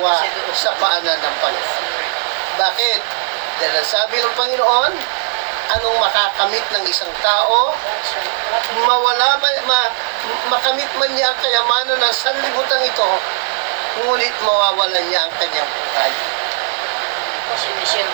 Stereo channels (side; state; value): left; silent; 65 dB below the other